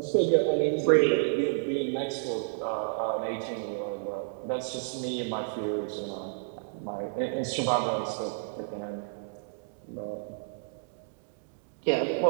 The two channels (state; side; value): silent; left; digital silence